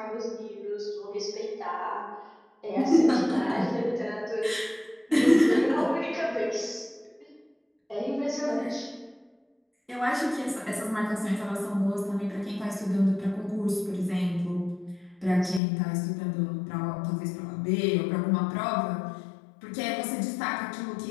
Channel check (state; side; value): drops out; right; at 15.6 s